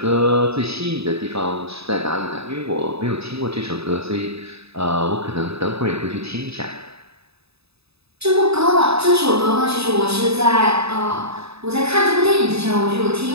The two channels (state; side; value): late; left; 0.79 ms